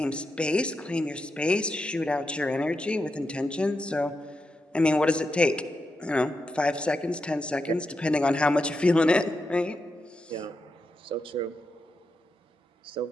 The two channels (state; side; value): normal; both; correlation 0.86